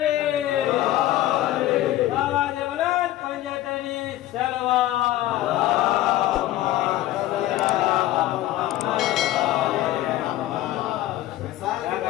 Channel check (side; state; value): right; quieter; 14.7 dB